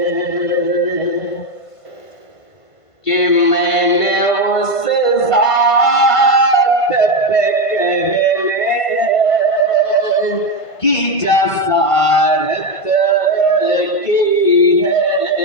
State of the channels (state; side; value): late; right; 1.5 ms